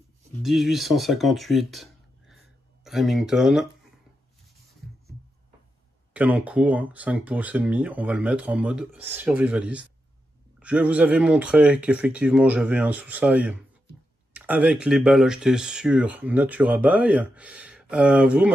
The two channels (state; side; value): normal; both; correlation 0.87